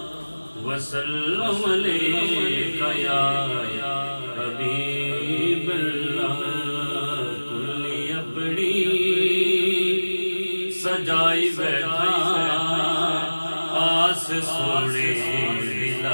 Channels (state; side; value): inverted; both; correlation -1.00